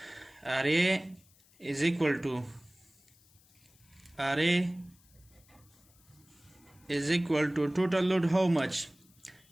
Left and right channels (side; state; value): left; noise; hiss, 29 dB below the sound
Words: RA is equal to total load how much?